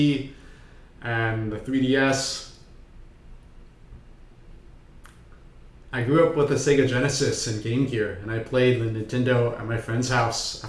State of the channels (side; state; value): both; identical; correlation 1.00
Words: and the 3DS. I grew up with a Sega Genesis and Game Gear, and I played the Nintendo at my friend's house